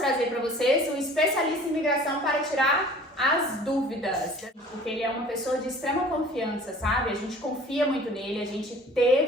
para vocês um especialista em imigração para tirar as dúvidas. Porque ele é uma pessoa de extrema confiança, sabe? A gente confia muito nele, a gente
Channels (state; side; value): normal; both; correlation 0.48